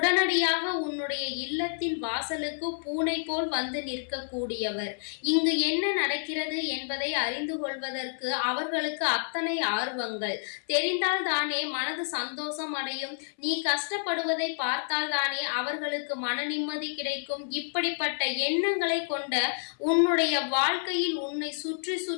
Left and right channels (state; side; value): silent; right; 56 dB below the other